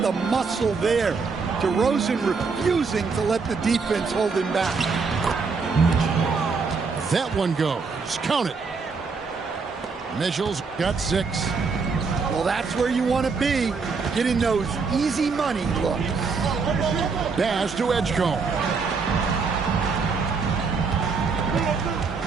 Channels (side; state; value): left; quieter; 4.9 dB